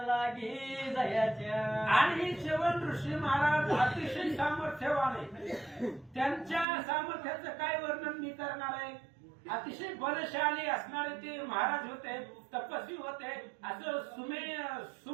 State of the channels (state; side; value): drops out; left; at 6.7 s